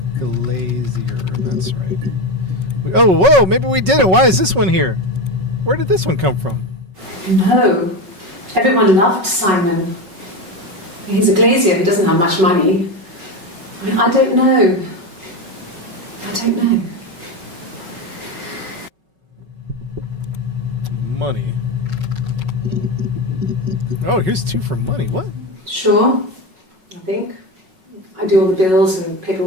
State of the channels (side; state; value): left; late; 5.4 ms